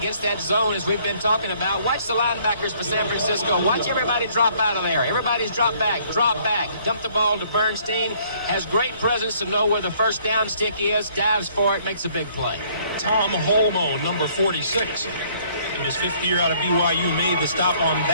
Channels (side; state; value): both; inverted; correlation -0.61